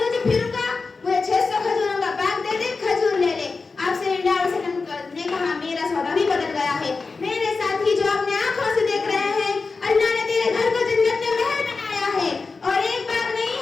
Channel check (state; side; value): quieter; right; 4.3 dB